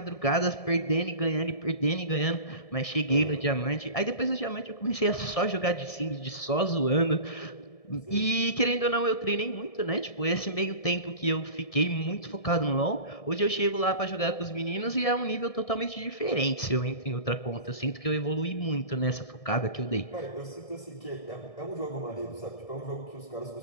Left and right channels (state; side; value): late; right; 1.7 ms